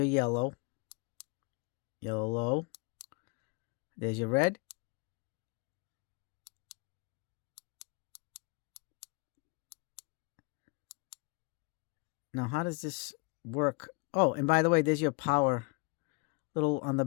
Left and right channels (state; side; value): quieter; right; 31.0 dB